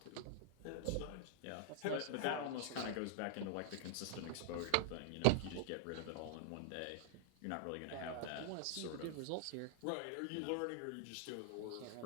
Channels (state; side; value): different; both; correlation 0.00